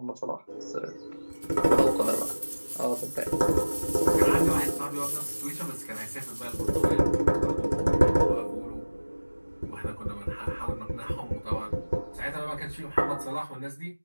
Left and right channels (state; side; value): inverted; both; correlation -1.00